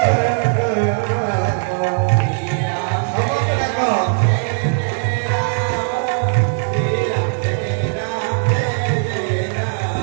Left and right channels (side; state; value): left; silent; 59 dB below the other